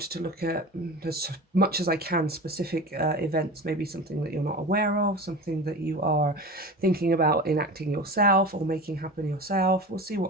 to look at, as much as I can, specific events, maybe something that you're not aware of, something that you are thinking about enacting yourself or making happen yourself. We'll see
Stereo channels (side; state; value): both; normal; correlation 0.32